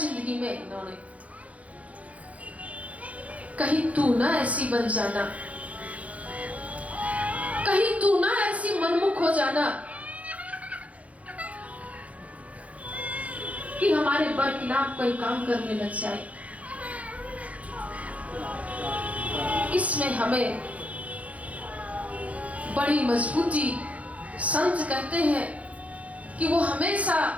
में इन्होंने। कहीं तू ना ऐसी बन जाना, कहीं तू ना ऐसी मनमुख हो जाना कि हमारे बरखिलाफ कोई काम करने लग जाए। इसमें हमें बड़ी मजबूती, संत कहते हैं कि वो हमेशा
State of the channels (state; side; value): late; left; 0.067 ms